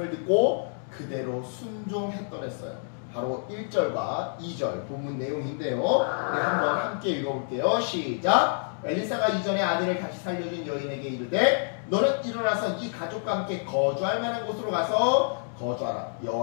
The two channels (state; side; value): silent; right; digital silence